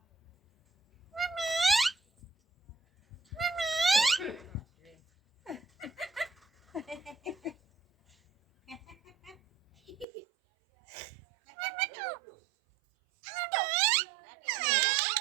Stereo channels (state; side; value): drops out; left; at 10.1 s